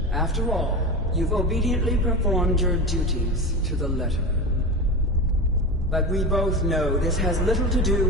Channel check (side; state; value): both; normal; correlation 0.24